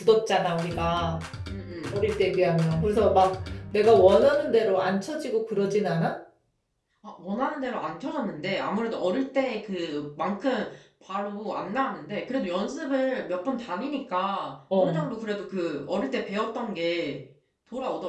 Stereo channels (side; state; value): both; identical; correlation 1.00